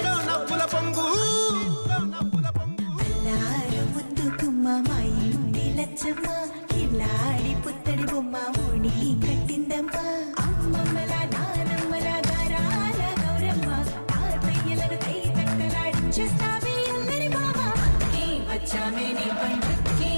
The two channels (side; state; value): both; inverted; correlation -1.00